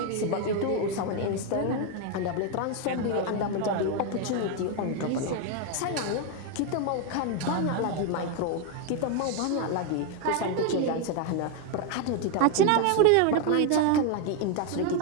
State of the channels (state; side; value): different; both; correlation 0.01